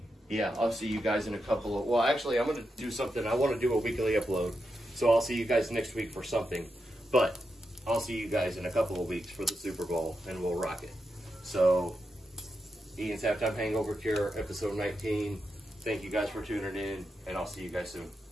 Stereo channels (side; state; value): both; normal; correlation 0.86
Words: yeah, I'll see you guys in a couple of, well, actually, I'm going to do something. I want to do a weekly upload, so I'll see you guys next week for something, but I'll see you guys in a couple of weeks for the Super Bowl, and we'll rock it. So, Ian's Halftime Hangover Cure, episode 19. Thank you guys for tuning in, and I'll see you guys soon.